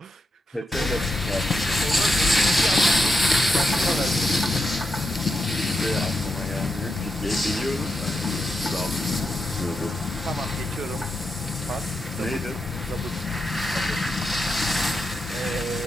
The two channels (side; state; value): both; normal; correlation 0.86